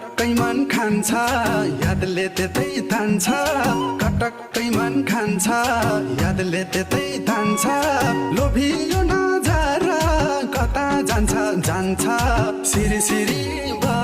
कटक्कै मन खान्छ यादले त्यतै तान्छ कटक्कै मन खान्छ यादले त्यतै तान्छ लोभियो नजर कता जान्छ जान्छ सिरी सिरी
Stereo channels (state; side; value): identical; both; correlation 1.00